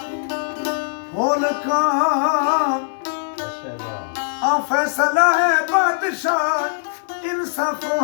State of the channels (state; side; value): silent; right; digital silence